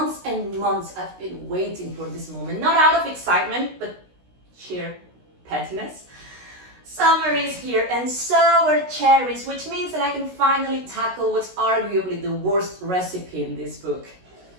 and months I've been waiting for this moment, not out of excitement, but sheer pettiness. Summer is here and so are cherries, which means that I can finally tackle what's arguably the worst recipe in this book.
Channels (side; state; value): left; late; 16 ms